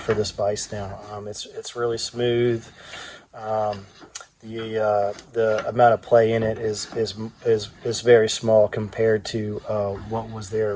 this vise now. It's really smooth. The amount of play in it is very small compared to what was there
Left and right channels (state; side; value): identical; both; correlation 1.00